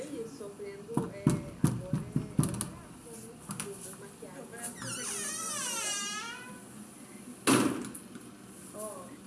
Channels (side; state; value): both; identical; correlation 1.00